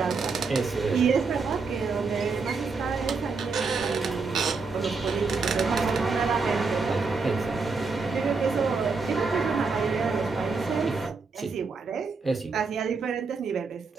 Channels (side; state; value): left; quieter; 4.5 dB